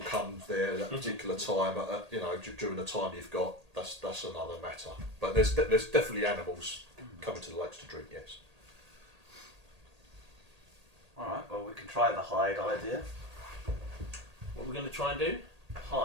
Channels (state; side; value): late; left; 1.8 ms